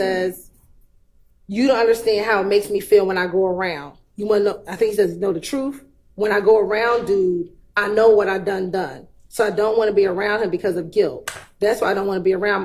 "You don't understand how it makes me feel when I go around. You want to know?" I think he says, "Know the truth. When I go around, dude, I know what I done. So I don't want to be around him because of guilt. That's why I don't want to be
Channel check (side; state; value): both; identical; correlation 1.00